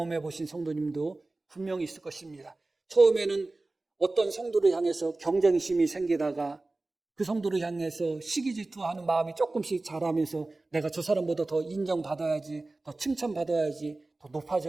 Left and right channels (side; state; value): left; quieter; 3.1 dB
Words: 보신 성도님도 분명히 있을 것입니다. 처음에는 어떤 성도를 향해서 경쟁심이 생기다가 그 성도를 향해서 시기 질투하는 마음이 조금씩 자라면서 내가 저 사람보다 더 인정받아야지, 더 칭찬받아야지, 더